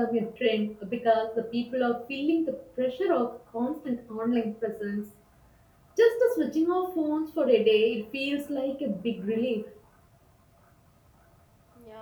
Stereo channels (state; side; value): identical; both; correlation 1.00